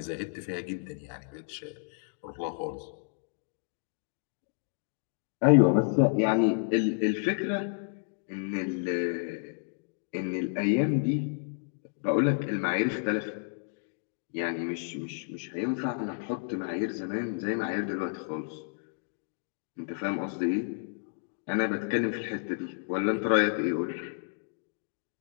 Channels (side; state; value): right; silent; digital silence